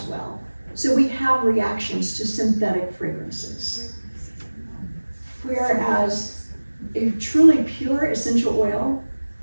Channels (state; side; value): inverted; both; correlation -1.00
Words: well. So we have reactions to synthetic fragrances. Whereas a truly pure essential oil